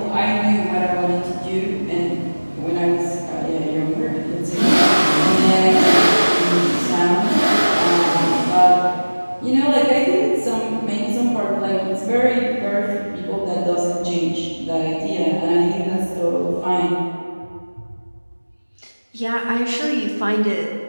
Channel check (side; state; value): both; inverted; correlation -1.00